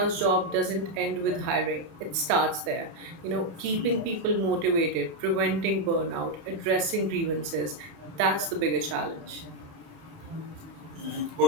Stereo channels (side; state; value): left; late; 30 ms